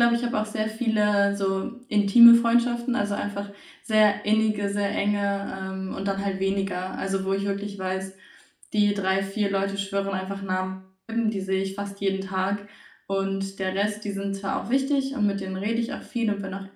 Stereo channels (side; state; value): both; identical; correlation 1.00